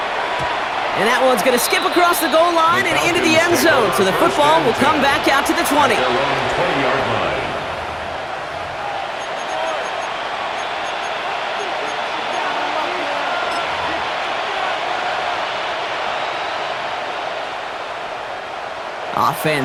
And that one's going to skip across the goal line and into the end zone, so the football will come back out to the 20. Their own 20-yard line.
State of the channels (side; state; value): both; identical; correlation 1.00